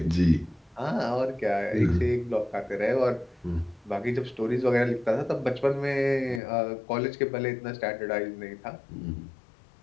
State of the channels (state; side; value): drops out; right; at 6.4 s